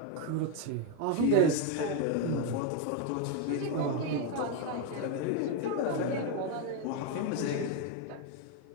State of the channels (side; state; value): both; different; correlation 0.02